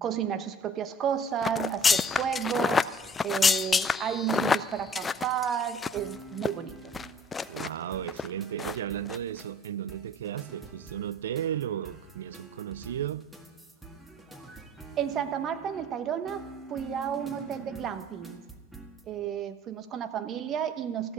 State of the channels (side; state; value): both; normal; correlation 0.51